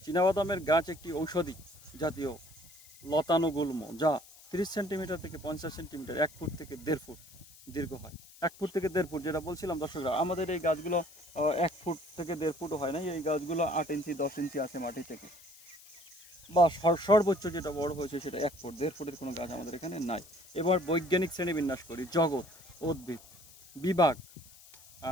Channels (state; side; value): noise; left; hiss, 22 dB below the sound